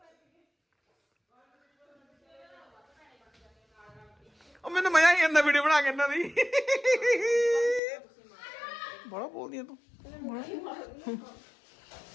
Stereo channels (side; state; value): right; drops out; at 7.8 s